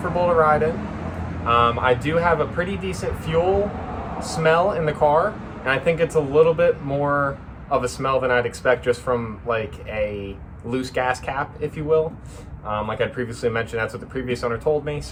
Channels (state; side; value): identical; both; correlation 1.00